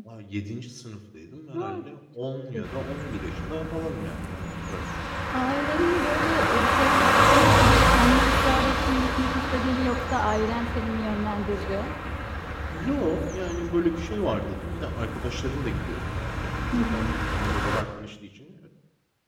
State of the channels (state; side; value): identical; both; correlation 1.00